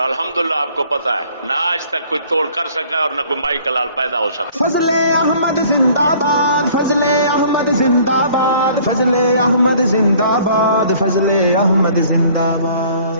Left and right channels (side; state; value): both; inverted; correlation -0.55